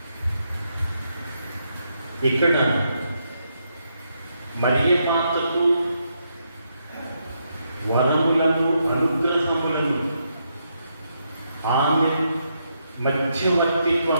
ఇక్కడ మరియే మాతకు వరములను అనుగ్రహములను ఆమె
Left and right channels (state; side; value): inverted; both; correlation -0.79